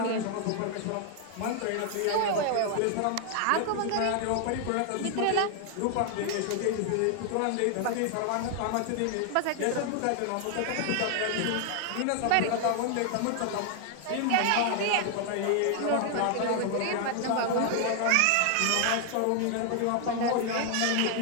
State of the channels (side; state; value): both; different; correlation 0.00